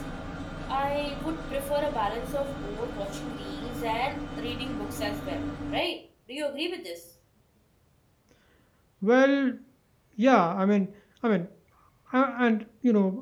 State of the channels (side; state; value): both; identical; correlation 1.00